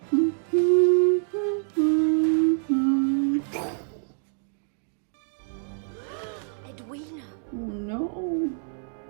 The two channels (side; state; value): left; silent; digital silence